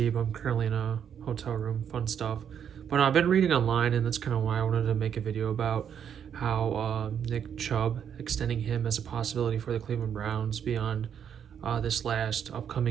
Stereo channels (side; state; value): left; quieter; 8.3 dB